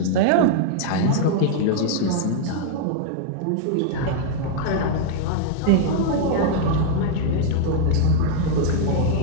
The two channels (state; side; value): different; both; correlation 0.00